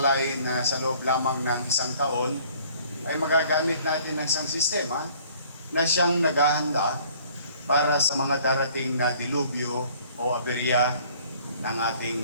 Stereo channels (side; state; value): both; inverted; correlation -0.56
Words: na sa loob lamang ng isang taon ay magagamit natin ng isang sistema na siyang naghahanda para sa mga darating na dilubyo o aberya ng